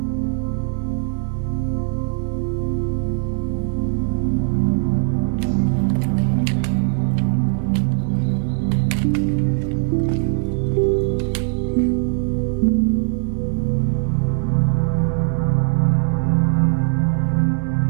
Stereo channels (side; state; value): left; silent; 66 dB below the other